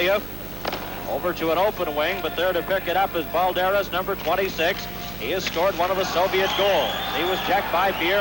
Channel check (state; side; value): noise; right; hum, 12 dB below the sound